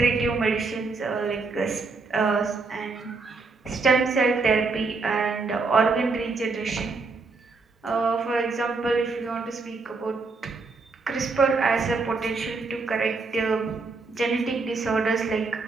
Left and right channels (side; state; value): left; quieter; 4.0 dB